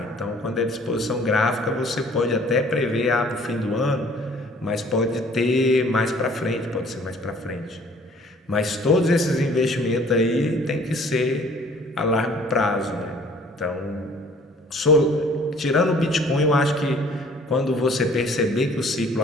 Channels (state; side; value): normal; both; correlation 0.54